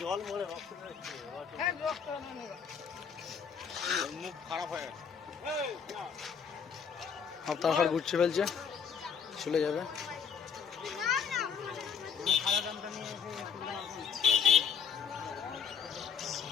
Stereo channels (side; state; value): right; quieter; 6.8 dB